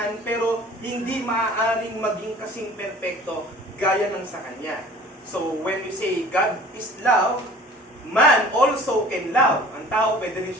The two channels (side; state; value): both; normal; correlation 0.47